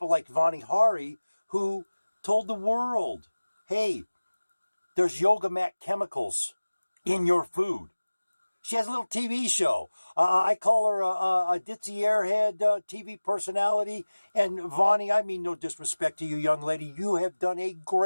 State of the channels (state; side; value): inverted; both; correlation -1.00